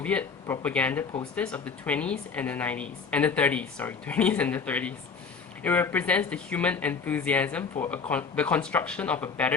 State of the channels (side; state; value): right; quieter; 5.4 dB